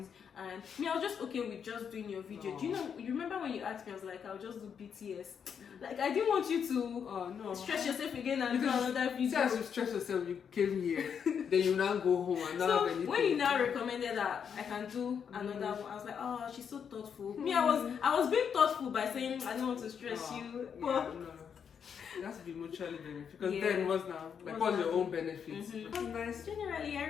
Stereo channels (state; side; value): quieter; right; 7.3 dB